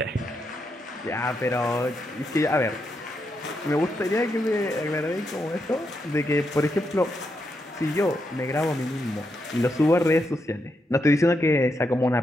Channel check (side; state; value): both; normal; correlation 0.82